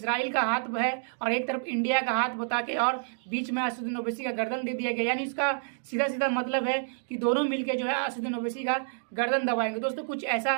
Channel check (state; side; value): silent; left; digital silence